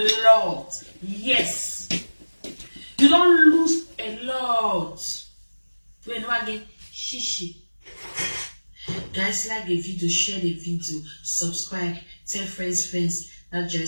lot. Yes. You don't lose a lot. When again, shishi. Guys, like the video, share the video, subscribe, tell friends that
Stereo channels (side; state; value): both; inverted; correlation -1.00